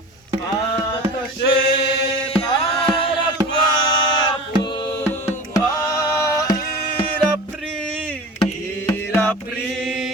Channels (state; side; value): normal; both; correlation 0.35